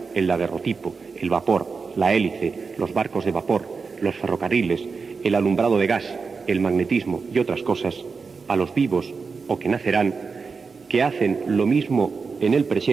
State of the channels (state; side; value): quieter; left; 4.9 dB